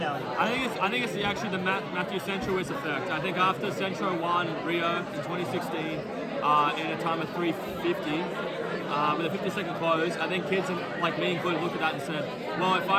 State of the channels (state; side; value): identical; both; correlation 1.00